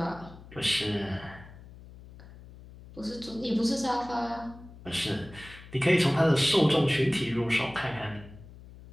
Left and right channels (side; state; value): left; noise; hum, 18 dB below the sound